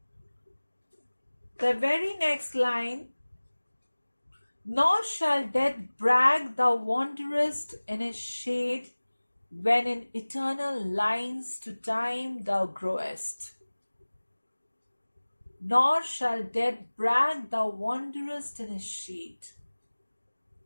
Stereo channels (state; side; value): inverted; both; correlation -1.00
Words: the very next line, nor shall death brag thou wanderest in his shade, when in eternal lines to time thou growest. Nor shall death brag thou wanderest in his shade,